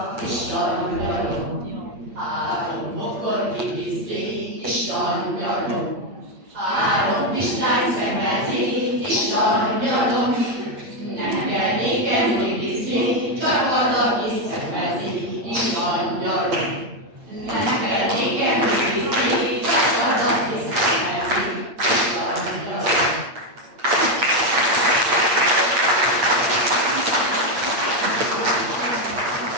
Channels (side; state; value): left; late; 8.6 ms